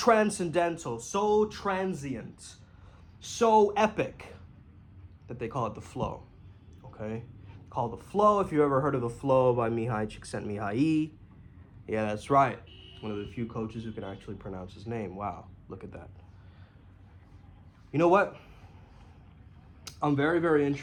so transient, so epic that they call it the flow. Okay? Call the flow. If you ever heard of the flow by Mihai Csikszentmihalyi. Yeah, that's right. One of the few coaches who can actually pronounce his name. Wow, look at that. You know what? I'm very, very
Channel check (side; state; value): both; identical; correlation 1.00